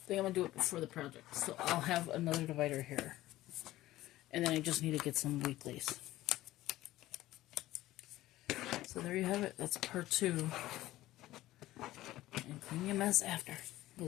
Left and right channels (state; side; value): quieter; right; 15.9 dB